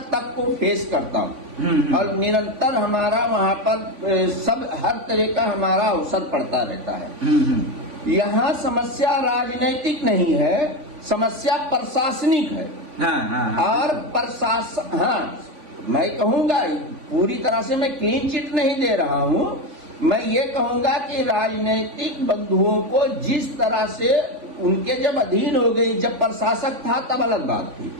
तक को फेस करता हूँ और निरंतर हमारा वहाँ पर सब हर तरह का हमारा अवसर पड़ता रहता है। यहाँ समस्या राजनीतिक नहीं है, समस्या प्रशासनिक है। और प्रशासन, हाँ मैं कहूँगा पूरी तरह से मैं क्लीन चिट नहीं दे रहा हूँ, मैं ये कहूँगा कि राजनीतिक बंधुओं को जिस तरह से उनके जब अधीन हो गई, जब प्रशासक था तब अलग बात थी।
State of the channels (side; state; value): left; late; 3.5 ms